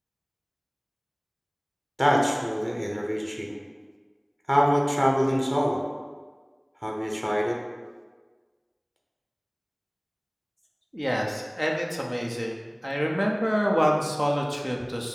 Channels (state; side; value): identical; both; correlation 1.00